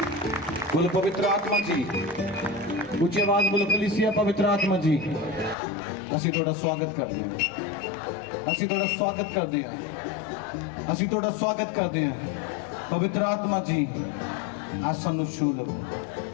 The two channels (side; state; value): right; drops out; at 5.6 s